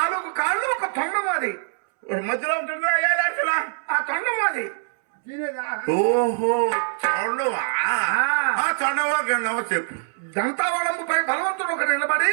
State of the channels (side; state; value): left; silent; 63 dB below the other